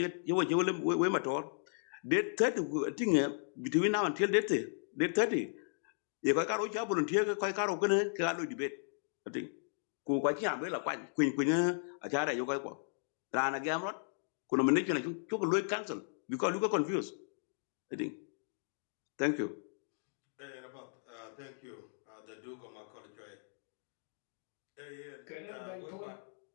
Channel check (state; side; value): silent; right; digital silence